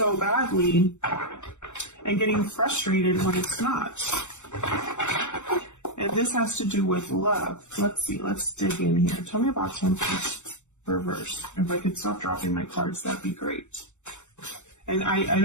badly and getting frustrated when it's not. And this has to do with love. Let's see. Let's dig in here. Tell me about Temperance reverse. If I could stop dropping my cards, that'd be great. And I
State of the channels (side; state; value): right; late; 0.84 ms